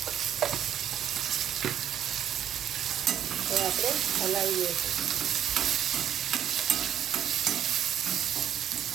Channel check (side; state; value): left; quieter; 10.2 dB